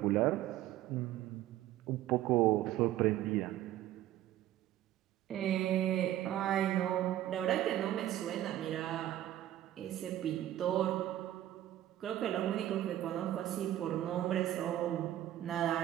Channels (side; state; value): left; quieter; 13.1 dB